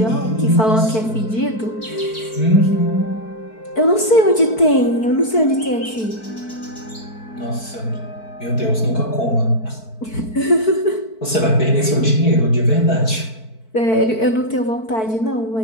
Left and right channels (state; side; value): late; right; 4.5 ms